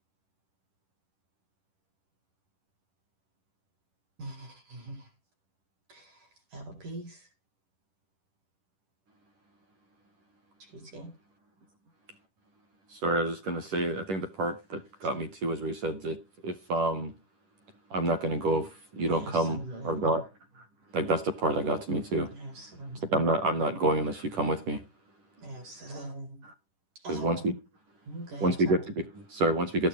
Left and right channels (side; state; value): left; late; 10 ms